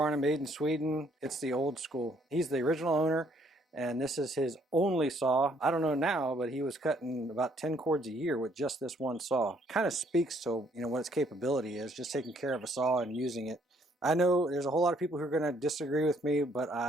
made in Sweden. It's the old school. He's the original owner. And this is his only saw. I don't know now, but he was cutting about 10 cords a year with just this one saw. Kind of speaks to, what its capability is, just taking care of a saw and using it. I know there's a whole lot of people who are going to disagree with me, but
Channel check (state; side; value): normal; both; correlation 0.66